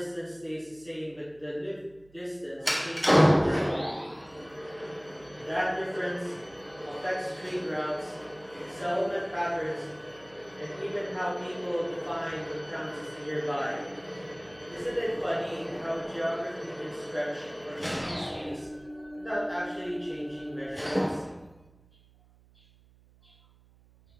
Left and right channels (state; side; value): noise; right; hum, 27 dB below the sound